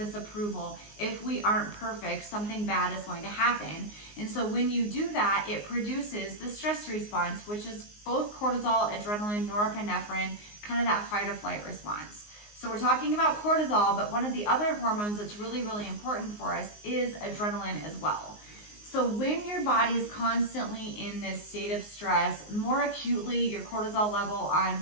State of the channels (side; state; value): right; late; 19 ms